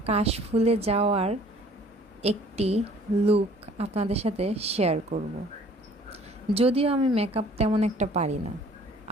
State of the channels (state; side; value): normal; both; correlation 0.54